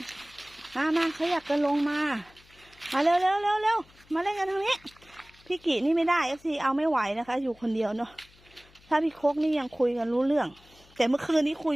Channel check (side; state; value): left; noise; hum, 28 dB below the sound